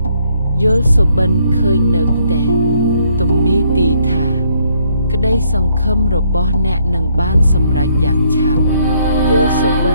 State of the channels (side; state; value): both; inverted; correlation -0.69